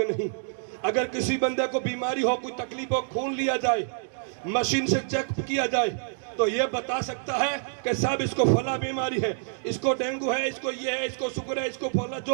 نہیں۔ اگر کسی بندے کو بیماری ہو، کوئی تکلیف ہو، خون لیا جائے، مشین سے چیک کیا جائے تو یہ بتا سکتا ہے کہ صاحب اس کو فلاں بیماری ہے، اس کو ڈینگو ہے، اس کو یہ ہے، اس کو شوگر ہے، اس کو فلاں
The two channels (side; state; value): left; silent; digital silence